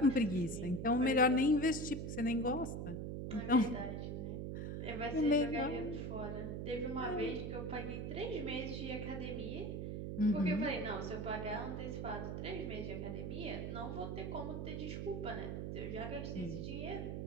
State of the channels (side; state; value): right; noise; hum, 4 dB below the sound